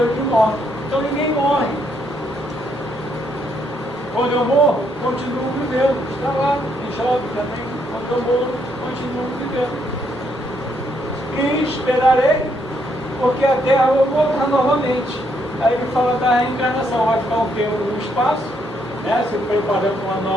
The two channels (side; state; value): both; normal; correlation 0.74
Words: dos mortos. Então ninguém morre. Quando eu morro, continuo vivendo. Está lá em Jó também. Quando eu morro, continuo vivendo. E esperarei, porque a terra vai voltar novamente. Aí ele fala da reencarnação, vai ficar um tempo no espaço, né, se preparando uma